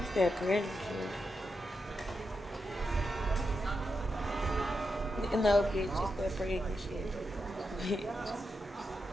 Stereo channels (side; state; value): both; normal; correlation 0.86